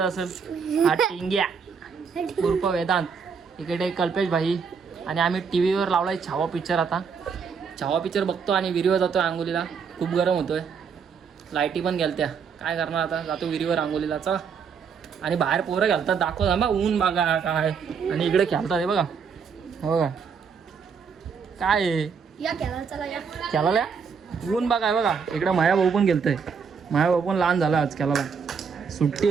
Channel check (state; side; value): quieter; left; 6.2 dB